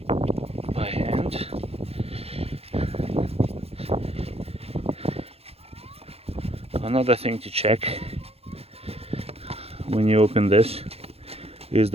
by hand. Another thing to check when you open this is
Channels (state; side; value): late; left; 0.29 ms